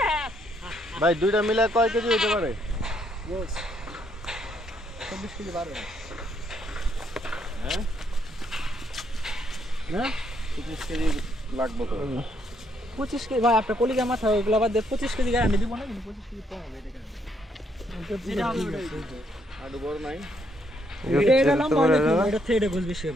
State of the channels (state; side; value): normal; both; correlation 0.72